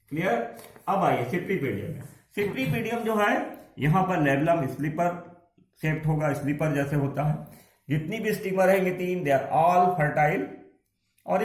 क्लियर। अब आइए सिप्रीपेडियम में। सिप्रीपेडियम जो है, यहां पर लेबलम स्लीपर शेप्ड होगा, स्लीपर जैसे होता है। जितनी भी स्टिग्मा रहेंगे 3, दे आर ऑल फर्टाइल, और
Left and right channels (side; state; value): both; identical; correlation 1.00